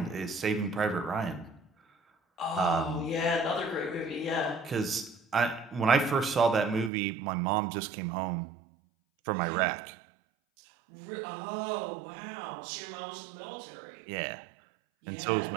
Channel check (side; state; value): left; drops out; at 6.9 s